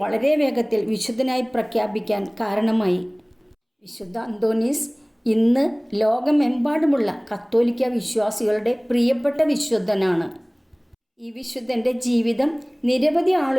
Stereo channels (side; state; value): both; identical; correlation 1.00